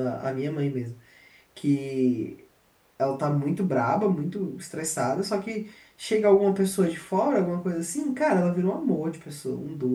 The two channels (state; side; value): identical; both; correlation 1.00